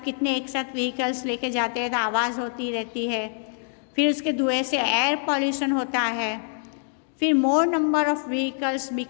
कितने एक साथ व्हीकल्स लेके जाते हैं तो आवाज़ होती रहती है। फिर उसके धुएं से एयर पॉल्यूशन होता है। फिर मोर number of vehicles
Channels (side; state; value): right; silent; digital silence